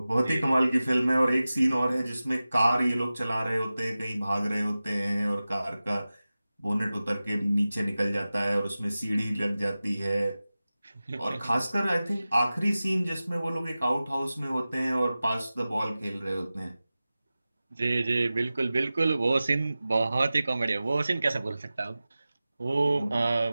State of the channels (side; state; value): both; inverted; correlation -0.96